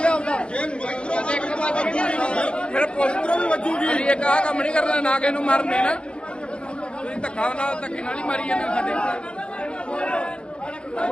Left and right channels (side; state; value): right; late; 0.056 ms